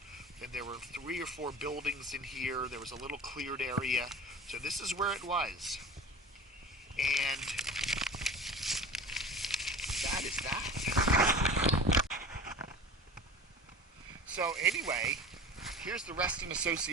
and there were 3 or 4 buildings in here. There was a little cleared area, so this is where it was. And that is that. So anyway, here's the Reston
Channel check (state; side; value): normal; both; correlation 0.37